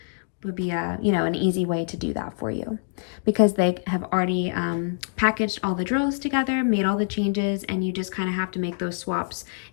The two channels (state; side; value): silent; right; digital silence